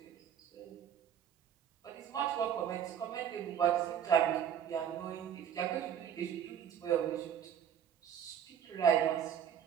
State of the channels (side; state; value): left; quieter; 9.0 dB